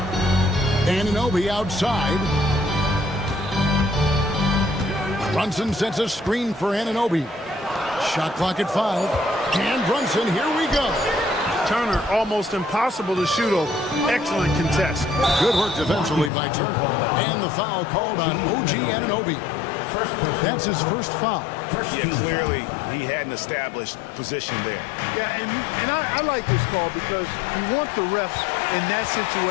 Anunoby outside. Brunson sets a screen for Anunoby. Shot clock at 5. And Brunson, here we go. Turner, almost impossible to shoot over. Excellent contest. Good work defensively by Turner. And the foul called on OG Anunoby. That's his first foul. Yeah, clearly he had an established position there. Yeah, and I like this call because you want the refs in that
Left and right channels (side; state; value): right; drops out; at 16.3 s